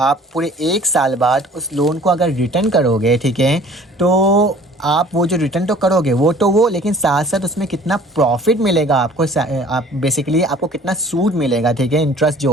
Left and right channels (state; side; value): normal; both; correlation 0.50